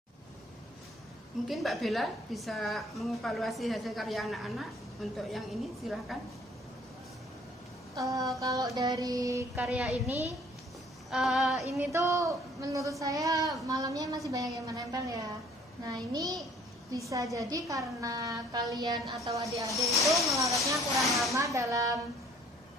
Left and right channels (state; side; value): normal; both; correlation 0.57